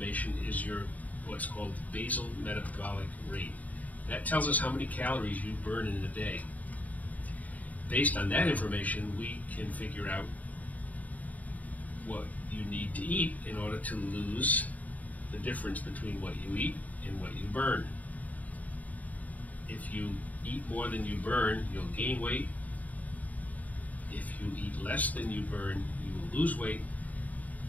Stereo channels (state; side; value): late; right; 0.074 ms